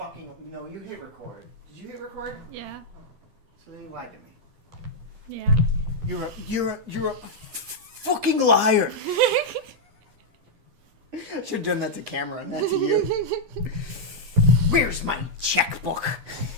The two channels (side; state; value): left; late; 12 ms